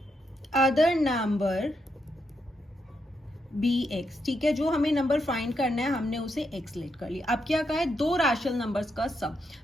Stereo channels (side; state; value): both; normal; correlation 0.81